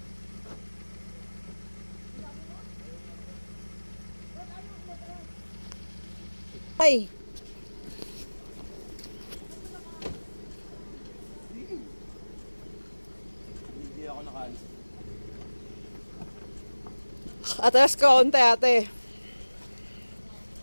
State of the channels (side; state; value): both; inverted; correlation -1.00